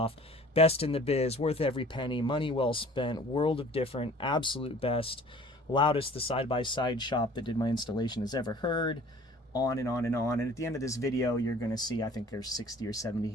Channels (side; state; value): both; normal; correlation 0.49